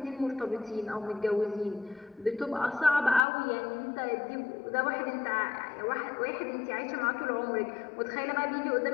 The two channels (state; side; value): drops out; right; at 3.2 s